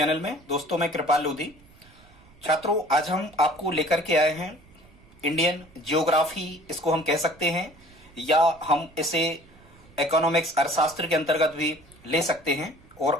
में। दोस्तों मैं कृपाल लोधी। छात्रों, आज हम आपको लेकर के आए हैं इंडियन जियोग्राफी, इसको हम कह सकते हैं, या हम इसे इकोनॉमिक्स अर्थशास्त्र के अंतर्गत भी ले सकते हैं।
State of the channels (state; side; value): noise; right; rumble, 26 dB below the sound